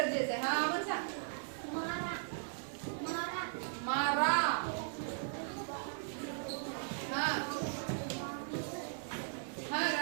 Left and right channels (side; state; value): left; silent; digital silence